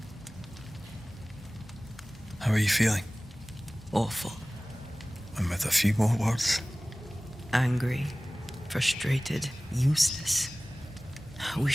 How are you feeling? Awful. And with a few more words? Angry. Frustrated, useless. We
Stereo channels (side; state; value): both; normal; correlation 0.98